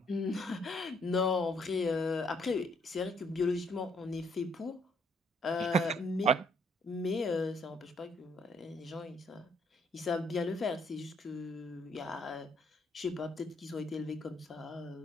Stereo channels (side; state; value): both; normal; correlation 0.68